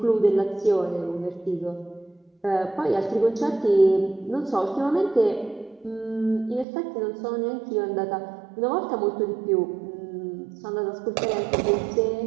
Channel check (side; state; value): left; drops out; at 6.7 s